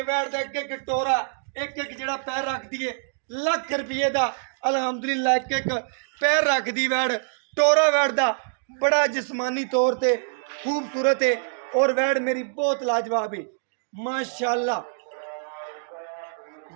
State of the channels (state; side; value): silent; left; digital silence